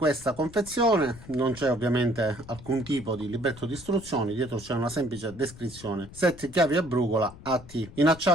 confezione, non c'è ovviamente alcun tipo di libretto di istruzioni, dietro c'è una semplice descrizione. Set chiavi a brugola AT, in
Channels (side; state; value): left; noise; rumble, 18 dB below the sound